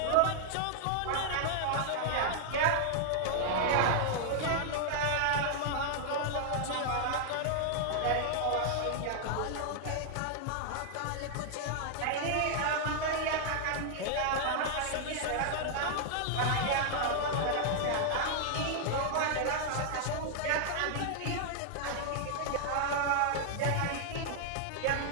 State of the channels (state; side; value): different; both; correlation -0.01